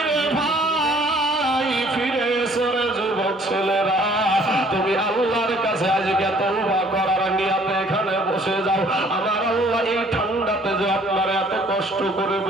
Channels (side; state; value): both; normal; correlation 0.58